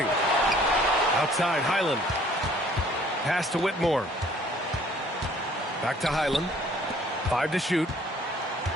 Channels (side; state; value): both; normal; correlation 0.57